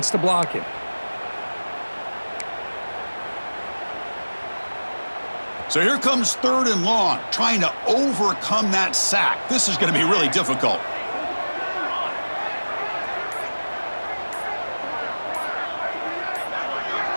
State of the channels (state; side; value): inverted; both; correlation -1.00